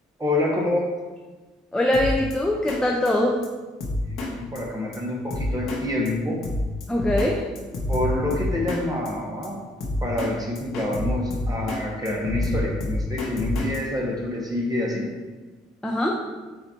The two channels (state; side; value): normal; both; correlation 0.70